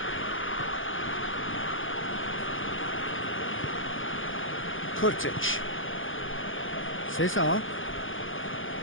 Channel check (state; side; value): late; right; 0.58 ms